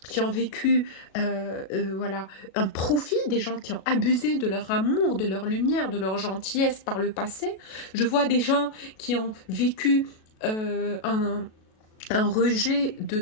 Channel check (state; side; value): late; right; 37 ms